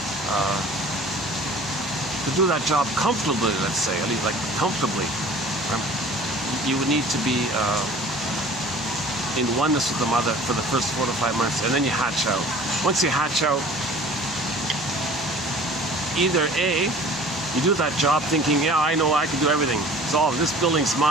to do that job comfortably, let's say, at least like comfortably, you would need to be in oneness with the mother for the first 4 to 5 months, and then you hatch out. Once you hatch out, either A, you do that job thinking, yeah, I know I can do everything. It's all, this building's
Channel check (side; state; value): both; normal; correlation 0.46